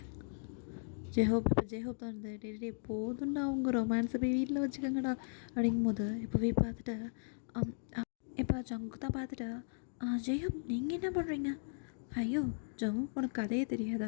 ஜெஹோப் இப்போ ஜெஹோப் தான் இருந்தது. டே போதும்டா அவங்க ரொமான்ஸை போய் வீட்டில் வச்சுக்கோங்கடா அப்படிங்கும்போது இப்போ பார்த்துட்டு இப்போ ஜங்கு தான் பார்த்துட்டு, ஜெயப் நீங்கள் என்ன பண்ணுறீங்க?" "ஐயோ ஜங்கு உனக்கு கதையே தெரியாதா?"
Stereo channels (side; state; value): right; silent; digital silence